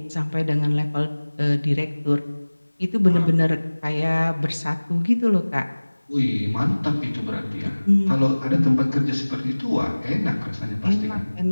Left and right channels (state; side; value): inverted; both; correlation -1.00